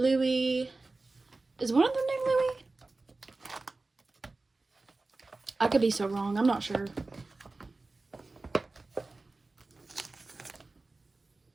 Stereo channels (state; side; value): quieter; left; 3.4 dB